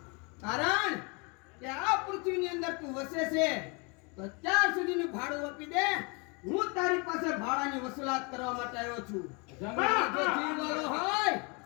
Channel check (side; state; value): right; quieter; 31.2 dB